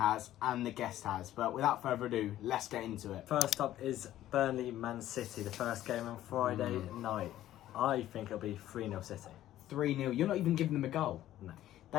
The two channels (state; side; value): quieter; right; 13.3 dB